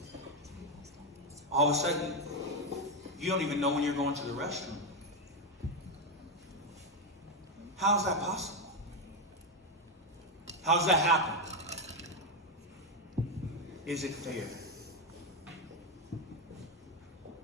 All of a sudden, you don't even know when you're going to the restroom. How is that possible? How does that happen? Is it fair?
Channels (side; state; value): both; normal; correlation 0.07